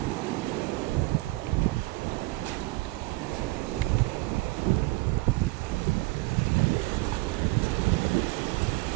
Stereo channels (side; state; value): left; quieter; 22.7 dB